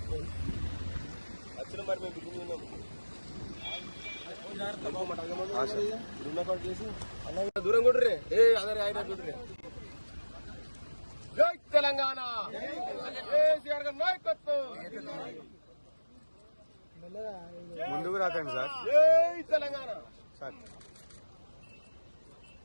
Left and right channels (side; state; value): both; inverted; correlation -1.00